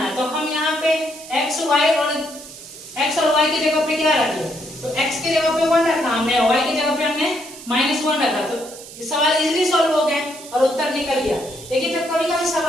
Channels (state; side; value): noise; right; hiss, 15 dB below the sound